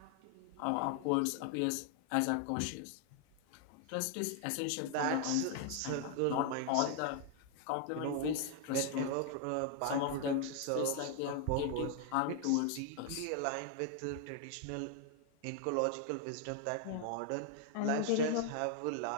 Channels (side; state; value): both; different; correlation 0.00